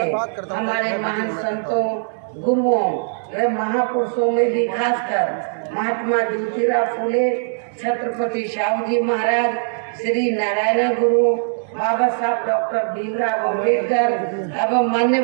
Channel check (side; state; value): left; silent; digital silence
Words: हमारे महान संतों, गुरुओं व महापुरुषों में भी खासकर महात्मा ज्योतिराव फुले, छत्रपति शाहू महाराज, श्री नारायण गुरु, बाबा साहब डॉक्टर भीमराव अम्बेडकर एवं